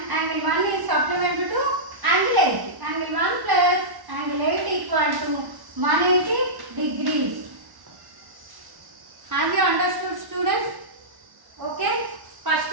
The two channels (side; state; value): left; late; 1.1 ms